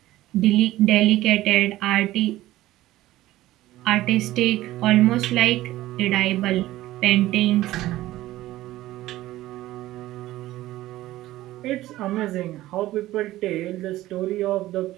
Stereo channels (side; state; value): left; quieter; 15.9 dB